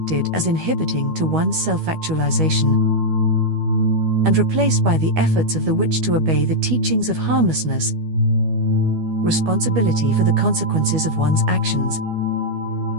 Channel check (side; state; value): left; late; 12 ms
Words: as inhibiting to one's self-actualization and replaced by the efforts of the witch to obey the teachings of harmlessness, responsibility for the consequences of one's actions,